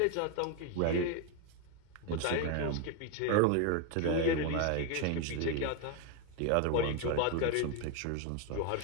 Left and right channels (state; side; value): different; both; correlation 0.01